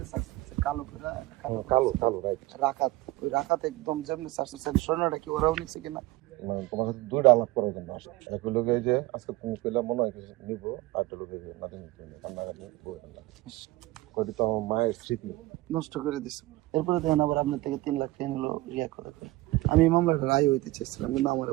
সার্চ করছে কালো করে, কালো কালো রাইট। রাকাত, ওই রাকাত একদম যেমনি সার্চ করছে, স্বর্ণটা কি ওরাও নিচ্ছে কিনা। মানে তোমার সাথে দুইটা আলাপ করার জন্য আসে। এক লোকে যে আজকে তুমি পেলে মনে হয় কিছু নিবো, আর একটা লোকে যে নাতি নিতে কান্নাকাটি করি তো আমার মায়ের স্মৃতি নষ্ট করে দিচ্ছে। এরপরে দেখেন আবার আপনার থেকে 3 লাখ টাকা নিল রিয়া করে করে। আমি এই মামলাটা রায় হইতে চেয়েছিলাম, কিন্তু আমার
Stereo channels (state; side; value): quieter; left; 18.8 dB